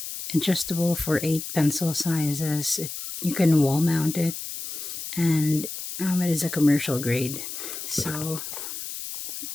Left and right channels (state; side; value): noise; left; hiss, 8 dB below the sound